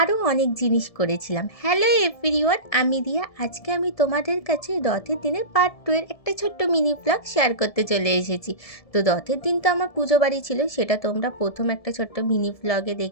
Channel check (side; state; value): right; late; 1.7 ms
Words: অনেক জিনিস করেছিলাম। হ্যালো এভরিওয়ান, আমি রিয়া। আজকে আমি তোমাদের কাছে রথের দিনের পার্ট 2 এর একটা ছোট্ট মিনি ব্লগ শেয়ার করতে চলে এসেছি। তো রথের দিন তো আমার পুজো বাড়ি ছিল, সেটা তোমরা প্রথম একটা ছোট্ট মিনি ব্লগে